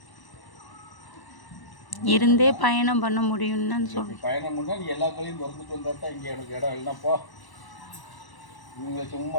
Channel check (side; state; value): right; late; 1.0 ms